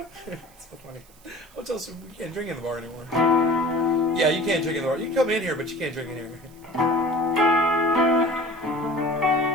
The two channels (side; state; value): right; noise; hiss, 27 dB below the sound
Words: So funny. Hotel says we can't drink in the bar anymore. Yeah, you can't drink in the bar. You can come in here, but you can't drink in here.